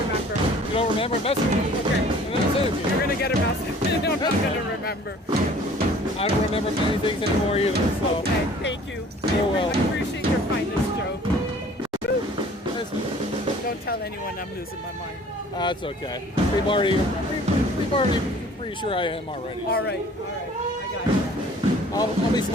remember. You don't remember? Message me. Okay. And then I'll send it to You're you. gonna get a message. I'm not gonna remember. I don't remember many things anymore either, so. Okay, thank you. Oh, well. I appreciate your kindness, Joe. That's, Don't tell anyone I'm losing my mind. that's okay. We've already pretty sure I am already. All right, I got it. I'll be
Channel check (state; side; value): normal; both; correlation 0.51